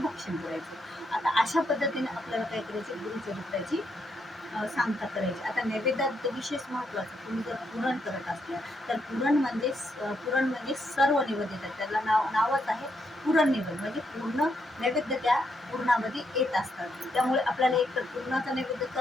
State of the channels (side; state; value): both; normal; correlation 0.78